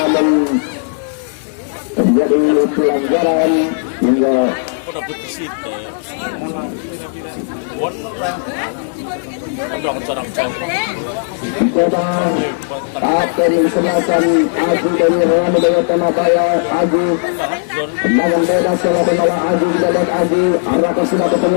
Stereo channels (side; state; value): right; silent; digital silence